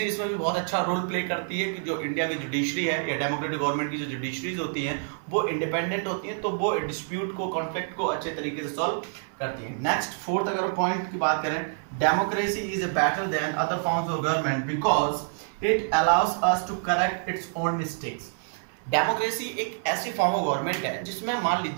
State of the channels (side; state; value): left; silent; 60 dB below the other